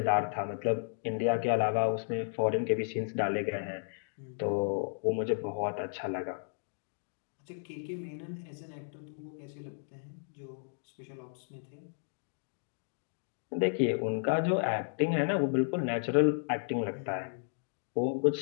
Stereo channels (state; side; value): silent; right; digital silence